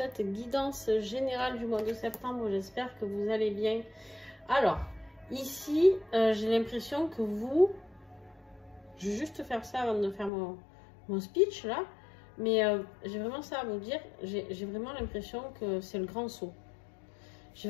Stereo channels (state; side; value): drops out; right; at 10.3 s